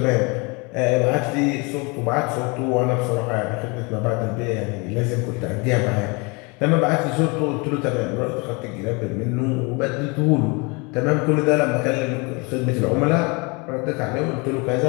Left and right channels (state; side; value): quieter; right; 28.9 dB